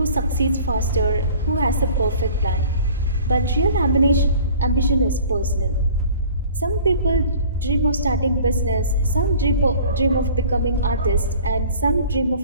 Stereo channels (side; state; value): both; inverted; correlation -0.47